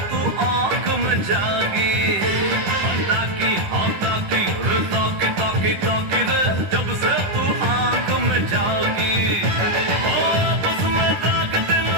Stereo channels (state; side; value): late; left; 10 ms